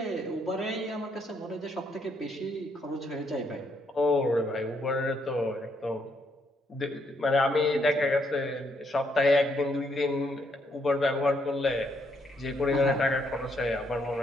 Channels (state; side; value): normal; both; correlation 0.73